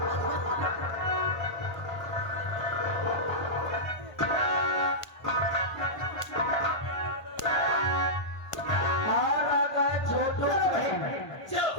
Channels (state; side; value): late; right; 1.5 ms